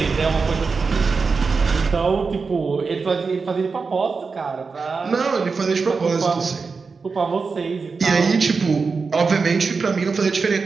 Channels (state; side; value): quieter; left; 4.7 dB